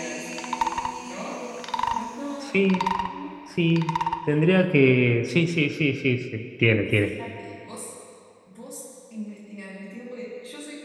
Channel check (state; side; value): identical; both; correlation 1.00